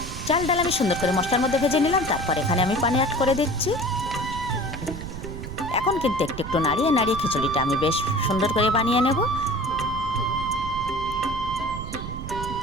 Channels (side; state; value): right; noise; rumble, 8 dB below the sound